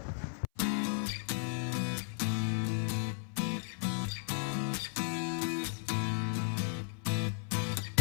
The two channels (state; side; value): silent; right; 54 dB below the other